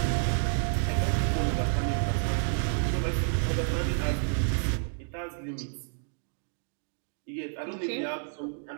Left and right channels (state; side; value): silent; left; digital silence